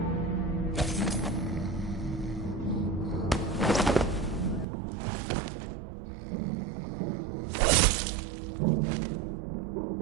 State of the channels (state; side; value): drops out; left; at 4.7 s